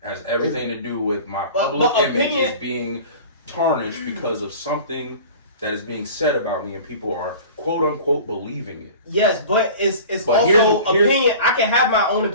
It has everything to do with my public image is being tarnished because of something that is being said about me, and people are quote unquote believing it. Yes, but it's also opinion. I can have my own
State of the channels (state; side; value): inverted; both; correlation -0.40